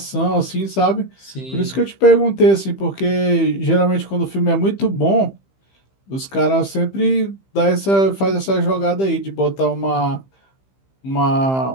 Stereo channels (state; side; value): late; right; 15 ms